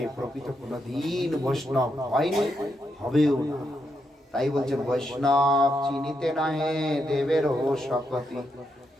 প্রকৃত কোনদিন বৈষ্ণব হয়নি, হবেও না। তাই বলছেন বৈষ্ণব চিনিতে না হে দেবের ও শকতি।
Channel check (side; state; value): both; normal; correlation 0.82